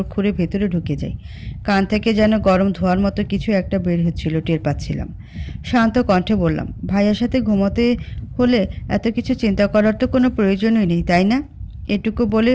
খুঁড়ে ভেতরে ঢুকে যাই। কান থেকে যেন গরম ধোয়ার মতো কিছু একটা বের হচ্ছিল, টের পাচ্ছিলাম। শান্ত কণ্ঠে বললাম, ভাইয়ার সাথে ঘুমোতে হলে এত কিছু চিন্তা করার তো কোনো প্রয়োজনই নেই, তাই না? এটুকু বলে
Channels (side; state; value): both; identical; correlation 1.00